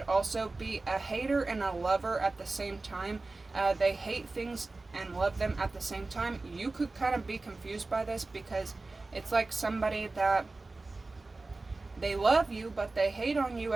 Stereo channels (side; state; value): left; quieter; 3.4 dB